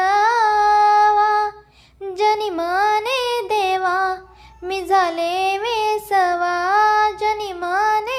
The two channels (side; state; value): both; identical; correlation 1.00